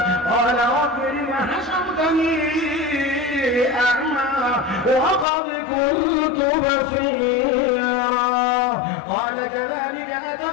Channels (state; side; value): drops out; right; at 5.2 s